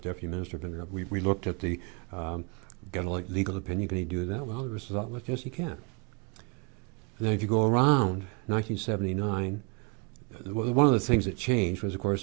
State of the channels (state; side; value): quieter; left; 32.0 dB